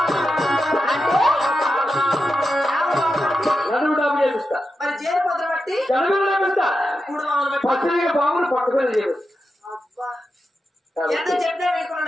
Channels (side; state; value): both; normal; correlation 0.89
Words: నడువు డాబు చేపిస్తా మరి జేరు పొద్దు బట్టి జనగలు చేపిస్తా మూడు మామూలు బట్టి పచ్చడిగా బాబులు పక్కపల్లి చేపిస్తా అబ్బా ఎంత చెప్పినా